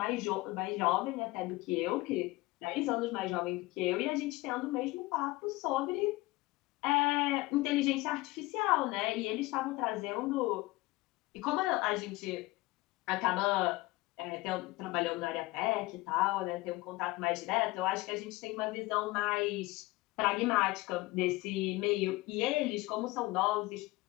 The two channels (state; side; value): quieter; right; 20.8 dB